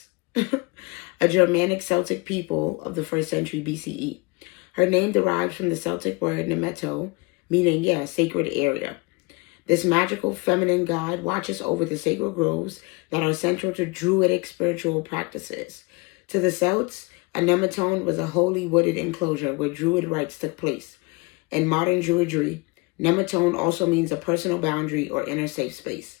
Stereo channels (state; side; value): quieter; right; 27.6 dB